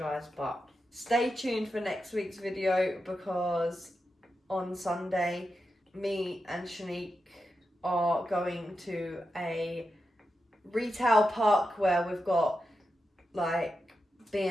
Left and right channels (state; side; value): normal; both; correlation 0.89